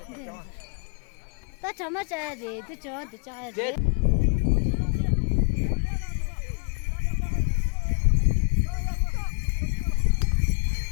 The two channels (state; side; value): quieter; right; 34.8 dB